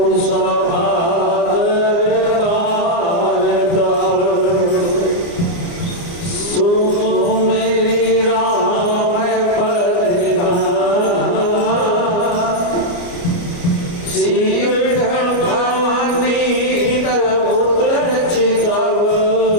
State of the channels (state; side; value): late; right; 29 ms